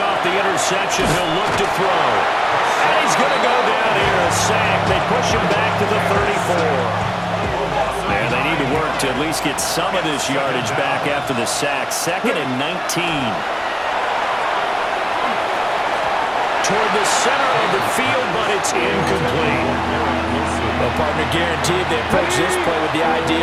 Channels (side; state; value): both; identical; correlation 1.00